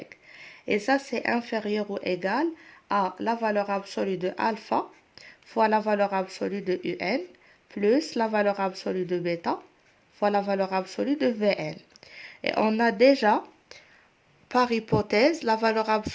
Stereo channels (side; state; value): both; identical; correlation 1.00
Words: Et ça, c'est inférieur ou égal à la valeur absolue de alpha fois la valeur absolue de un plus la valeur absolue de bêta fois la valeur absolue de vn. Et on a déjà, par hypothèse, la valeur